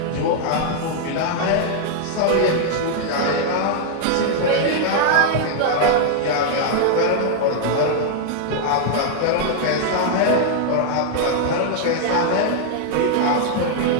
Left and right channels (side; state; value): both; different; correlation 0.00